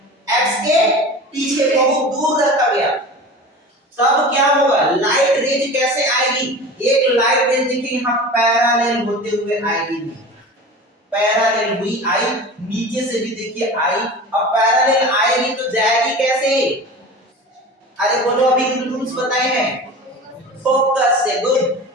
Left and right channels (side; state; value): both; normal; correlation 0.35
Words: पीछे बहुत दूर रखा गया, तब क्या होगा, लाइट रेज कैसे आएगी, एक लाइट रेज देखिए यहां पैरेलल होते हुए आएगी, पैरेलल हुई आई, नीचे से भी देखिए आई। अब पैरेलल आएगी तो जाएगी कैसे, अरे बोलो अभी रूल्स बताए हैं, फोकस से। गुड,